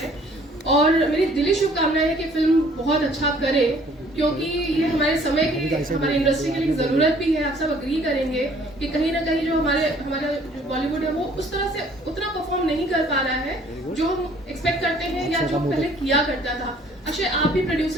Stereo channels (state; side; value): normal; both; correlation 0.57